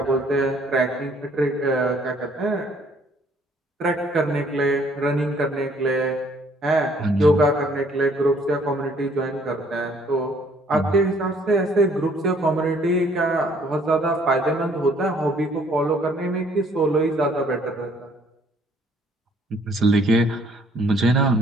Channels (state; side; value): normal; both; correlation 0.62